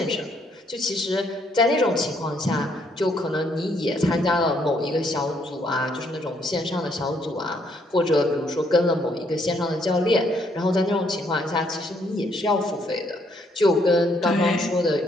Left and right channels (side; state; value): both; normal; correlation 0.70